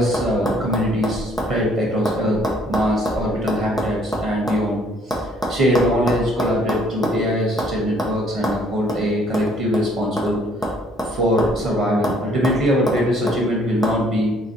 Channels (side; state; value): both; normal; correlation 0.62